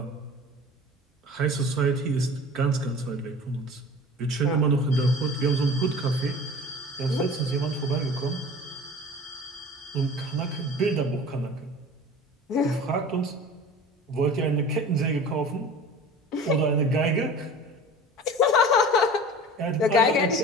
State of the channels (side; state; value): both; normal; correlation 0.39